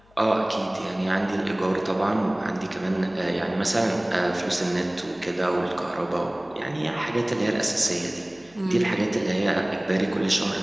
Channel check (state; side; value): noise; left; hum, 29 dB below the sound